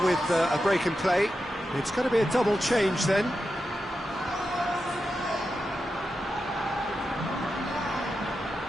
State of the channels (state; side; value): normal; both; correlation 0.89